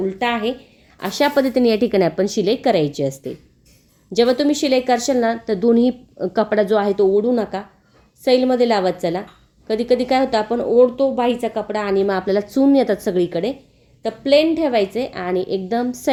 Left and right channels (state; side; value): identical; both; correlation 1.00